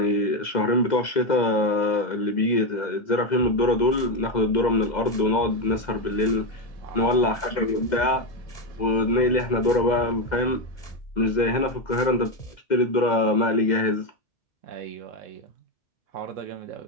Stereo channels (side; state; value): right; late; 2.1 ms